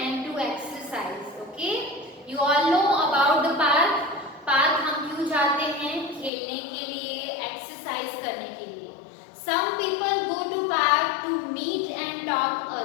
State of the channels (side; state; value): right; drops out; at 6.3 s